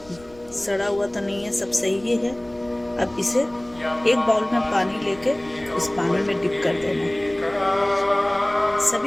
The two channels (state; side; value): noise; left; rumble, 25 dB below the sound